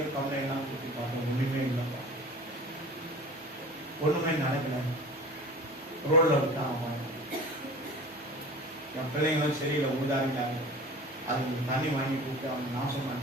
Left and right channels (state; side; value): normal; both; correlation 0.39